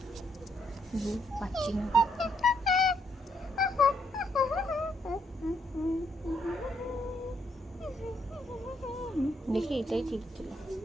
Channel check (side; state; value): both; normal; correlation 0.74